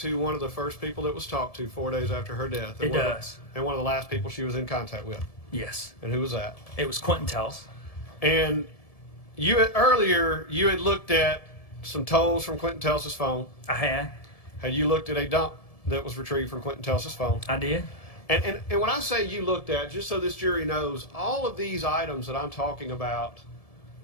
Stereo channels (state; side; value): late; right; 1.7 ms